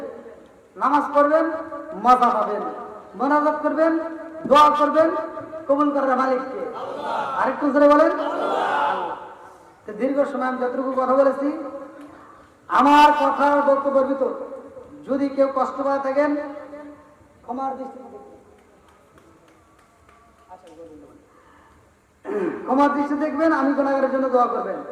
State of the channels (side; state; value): both; identical; correlation 1.00